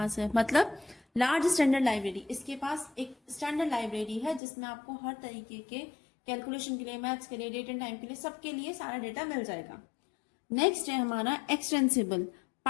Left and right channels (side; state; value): right; drops out; at 4.4 s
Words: है। मतलब लार्ज स्टैंडर्ड लाइब्रेरी, इसके पास एक स्टैंडर्ड लाइब्रेरी है जिसमें आपको हर तरीके के कैलकुलेशन के लिए, मैथ्स के लिए, डेट एंड टाइम के लिए, सबके लिए सारा डेटा मिल जाएगा। नेक्स्ट है हमारा extensible.